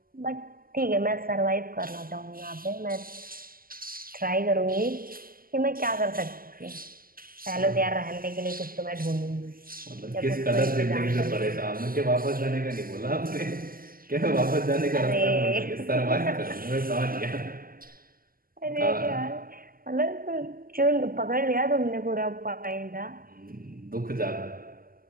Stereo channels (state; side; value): late; left; 0.42 ms